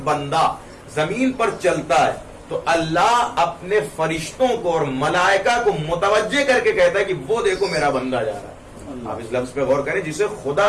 بندہ زمین پر چلتا ہے تو اللہ اپنے فرشتوں کو اور ملائکہ کو متوجہ کر کے کہتا ہے کہ وہ دیکھو میرا بندہ جا رہا ہے. آپ اس لفظ پہ غور کریں، جسے خدا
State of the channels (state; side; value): identical; both; correlation 1.00